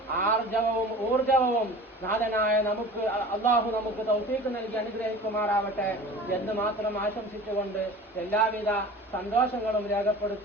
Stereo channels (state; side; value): normal; both; correlation 0.39